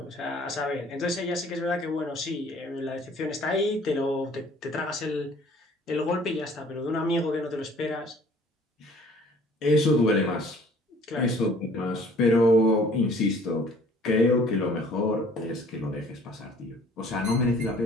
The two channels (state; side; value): normal; both; correlation 0.54